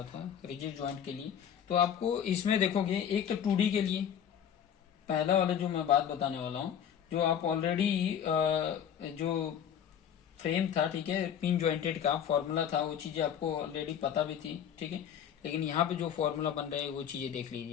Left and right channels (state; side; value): quieter; right; 8.9 dB